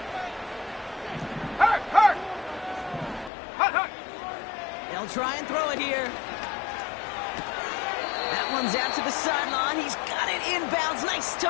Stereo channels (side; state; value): right; drops out; at 3.3 s